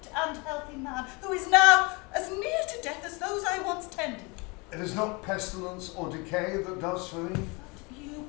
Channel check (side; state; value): right; quieter; 28.6 dB